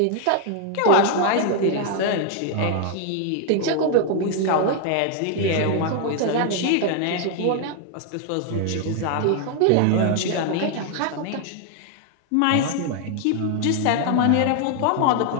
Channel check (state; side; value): different; both; correlation 0.00